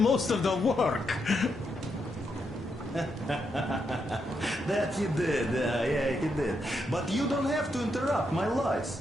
of the work. That he did, yeah, he did. But you don't have to interrupt my lies.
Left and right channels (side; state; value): both; normal; correlation 0.81